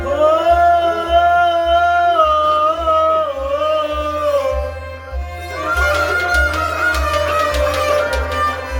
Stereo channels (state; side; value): identical; both; correlation 1.00